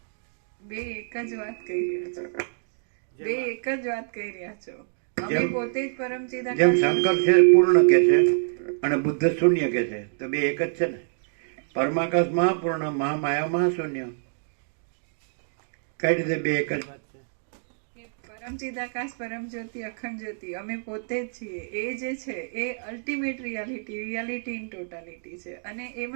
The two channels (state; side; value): silent; left; digital silence